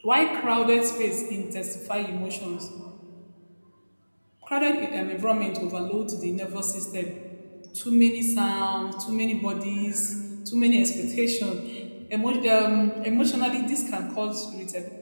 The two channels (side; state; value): both; inverted; correlation -1.00